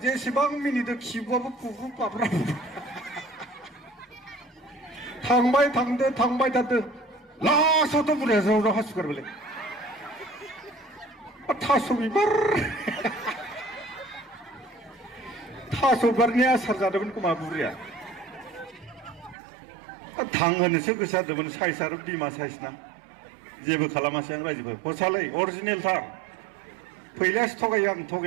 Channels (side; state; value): left; drops out; at 19.4 s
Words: जेसेबां मिनिदों खिबुआबो फुफु फाफ्रा थांबाय थादो लास्टआवथ' बुरैया ज्राव ज्राव हासुगारबायलै थास' बिबारनि आसार जादोंमोन खोमा बुरैया थांहोनोसो गोसो जादोंमोन साइज आरो बिमा साइज ना जेबो खालामासै आं रायजोफोर हरसालै अरिजिनेलथार फैलासो थगायो आं